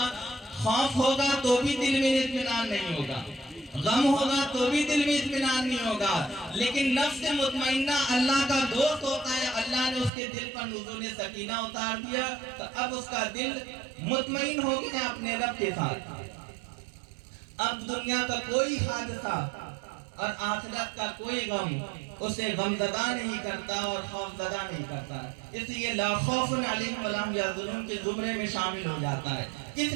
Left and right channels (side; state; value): left; drops out; at 10.1 s